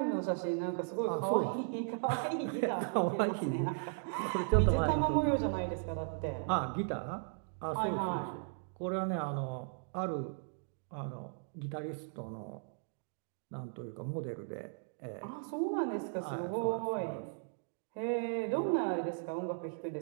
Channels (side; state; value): left; silent; digital silence